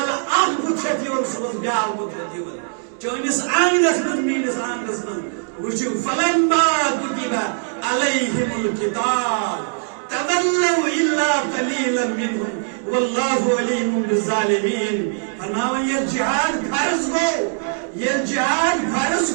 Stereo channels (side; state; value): left; silent; digital silence